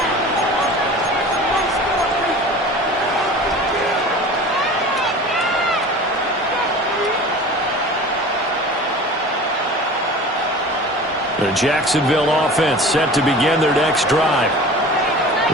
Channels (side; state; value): both; normal; correlation 0.39